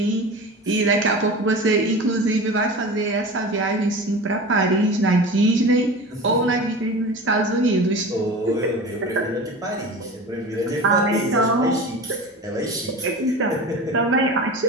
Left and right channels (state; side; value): normal; both; correlation 0.33